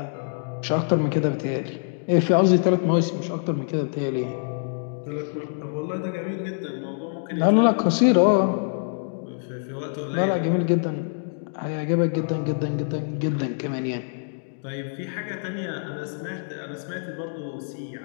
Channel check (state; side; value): silent; right; digital silence